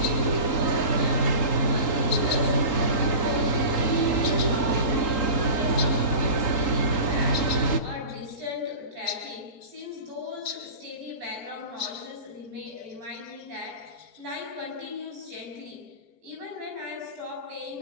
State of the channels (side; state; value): right; late; 3.8 ms